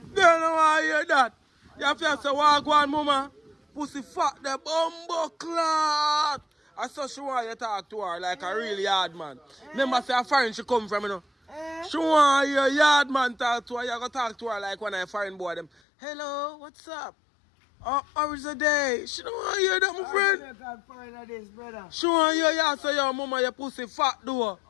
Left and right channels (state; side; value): drops out; right; at 15.7 s